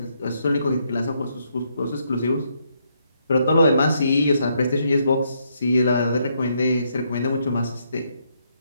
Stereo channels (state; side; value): inverted; both; correlation -0.75